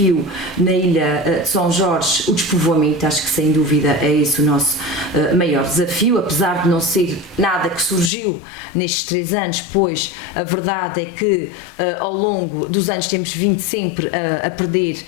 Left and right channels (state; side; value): drops out; right; at 8.1 s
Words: na Ilha de São Jorge, o despovoamento, acho que sem dúvida é esse o nosso maior desafio, apesar de não ser nada que surgiu nestes 3 anos, pois a verdade é que ao longo dos anos temos vindo sempre a